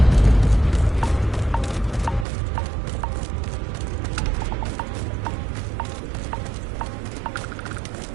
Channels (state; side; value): drops out; left; at 2.2 s